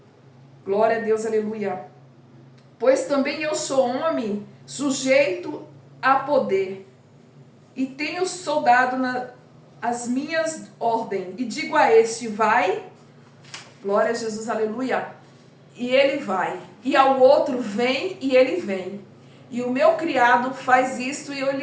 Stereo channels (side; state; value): both; identical; correlation 1.00